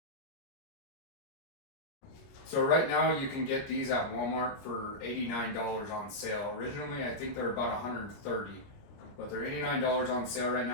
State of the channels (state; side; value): late; right; 29 ms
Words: So right now you can get these at Walmart for $89 on sale. Originally I think they're about $130, but they're $89 on sale right